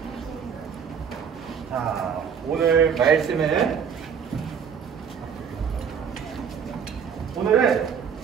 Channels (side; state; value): left; quieter; 7.3 dB